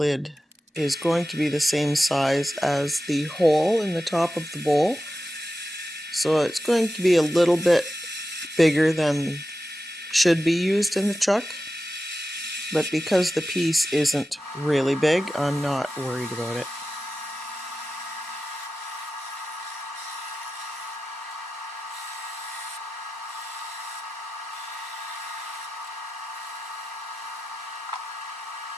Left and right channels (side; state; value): both; normal; correlation 0.93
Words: is going to be the same size as the hole in the top of the bowl. So it's going to be a little bit bigger than should be used in the chuck. But because the piece isn't really big, I'm not worried about it.